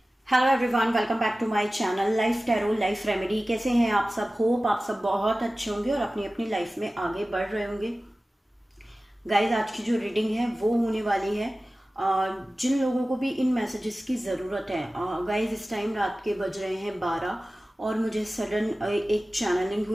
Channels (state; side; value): normal; both; correlation 0.96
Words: Hello everyone, welcome back to my channel life tarot life remedy. कैसे हैं आप सब? होप आप सब बहुत अच्छे होंगे और अपनी अपनी लाइफ में आगे बढ़ रहे होंगे। गाइज, आज की जो रीडिंग है वो होने वाली है जिन लोगों को भी इन मैसेजेस की ज़रूरत है। गाइज, इस टाइम रात के बज रहे हैं 12 और मुझे सडन एक चैनलिंग